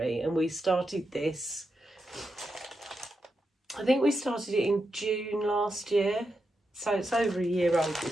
and we started this, I think we started it in June last year, so it's over a year old,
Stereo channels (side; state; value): both; normal; correlation 0.86